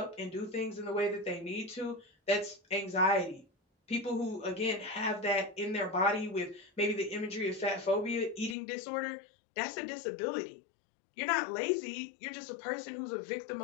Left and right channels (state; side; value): drops out; right; at 8.6 s